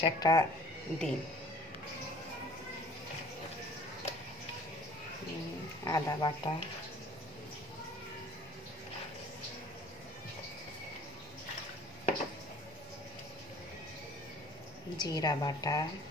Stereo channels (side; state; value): both; normal; correlation 0.51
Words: একটা দিন। আদা বাটা, জিরা বাটা,